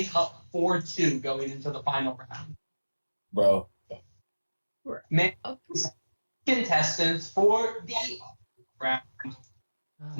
up 4-2 going into the final round. Bro. Man, contestants for the round.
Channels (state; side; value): inverted; both; correlation -1.00